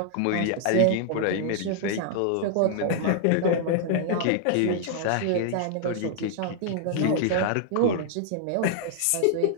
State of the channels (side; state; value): both; different; correlation -0.01